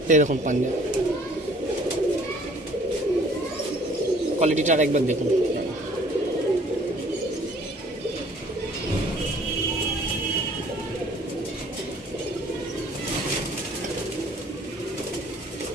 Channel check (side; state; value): both; normal; correlation 0.56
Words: এই দেখুন পাঞ্জা কোয়ালিটিটা আরেকবার দেখুন।